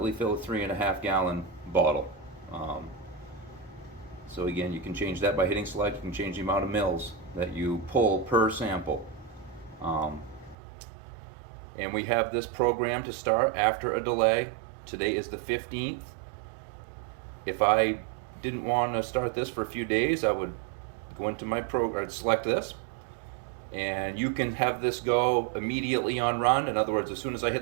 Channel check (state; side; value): drops out; left; at 10.6 s